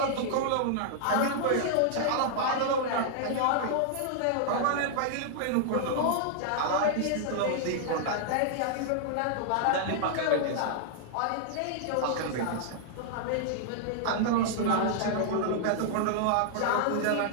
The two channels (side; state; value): both; different; correlation -0.01